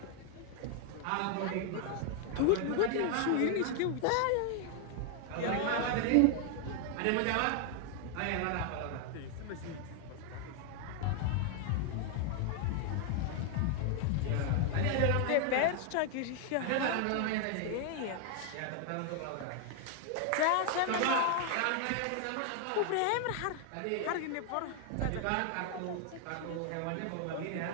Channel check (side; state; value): both; different; correlation 0.00